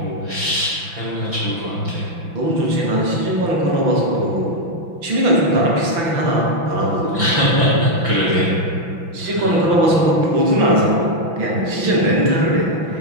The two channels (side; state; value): left; late; 6.0 ms